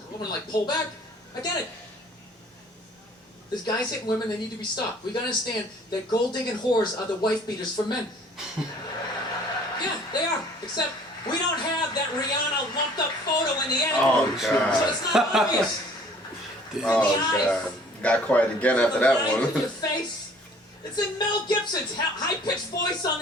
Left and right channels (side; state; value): both; normal; correlation 0.53